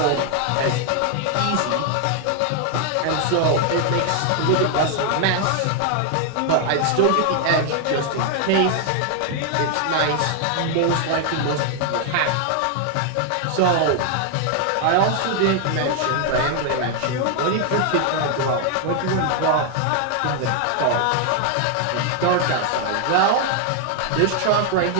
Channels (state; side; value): different; both; correlation 0.00